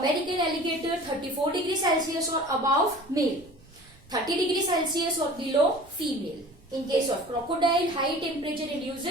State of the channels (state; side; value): noise; right; rumble, 27 dB below the sound